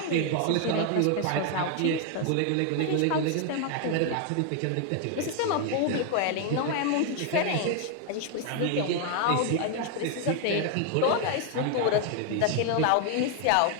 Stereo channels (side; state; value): both; different; correlation 0.00